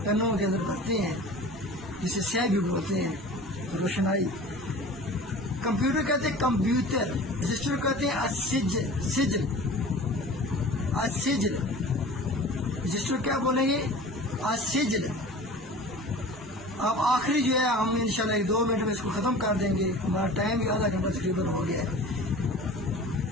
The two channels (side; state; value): both; normal; correlation 0.40